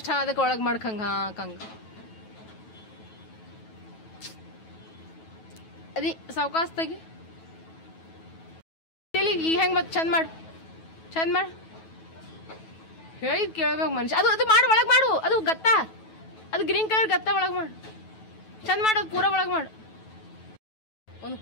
ಅದಕ್ಕೆ ಒಳಗೆ ಮಾಡ್ಕಂಗ ಹಾಕಂಗ. ಅದಿ ಸಾವಕಾಶ ತೆಗಿ. ಈಗ ಹೆಂಗ್ ಮತ್ ಚಂದ ಮಾಡು, ಚಂದ ಮಾಡು. ಹೇಳಿದ್ ಕೇಳ್ಬೇಕು ಮನುಷ್ಯ. ಅದು ಮಾಡು, ಒಳಗೆ ಮಾಡು. ಅದು ಗತ್ತ, ಅದು ಗ್ರೀನ್ ಕಲರ್ ಗತ್ತ ಒಳಗೆ ಮಾಡು. ಚಂದ ಮಾಡು, ಅದು ಪೂರ ಒಳಗೆ ಮಾಡು. ಒಂದು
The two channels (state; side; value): late; right; 9.2 ms